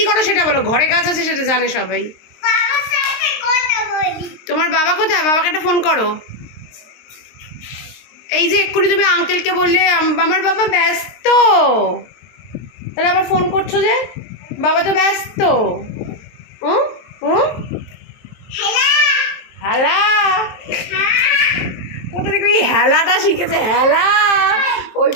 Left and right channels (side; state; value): right; late; 23 ms